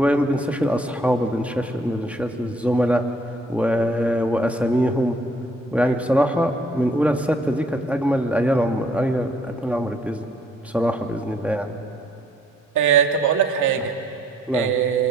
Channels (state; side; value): normal; both; correlation 0.64